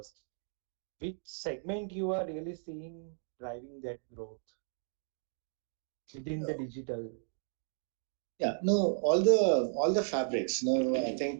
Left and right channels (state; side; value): silent; left; digital silence